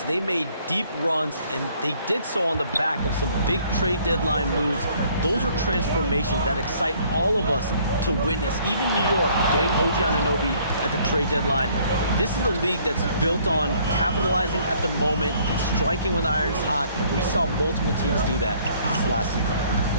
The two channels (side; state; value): both; inverted; correlation -0.61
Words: they made deep runs, and they did so on the back of some big trade deadline moves. Those are transformations that excite all of us to witness. Even New York getting OG Anunoby at the trade deadline. This is a league that's built on capitalizing at the moment and striking when the iron's hot, and we saw multiple teams do that this last